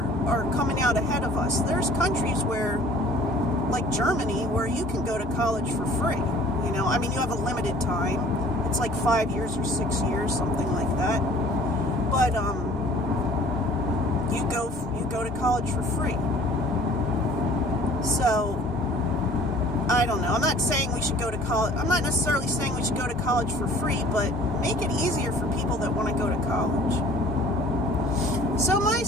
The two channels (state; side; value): normal; both; correlation 0.50